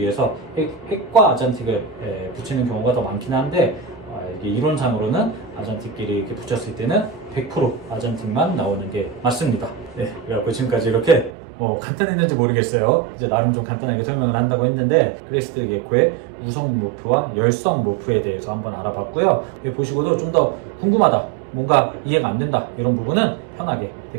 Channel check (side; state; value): left; drops out; at 11.4 s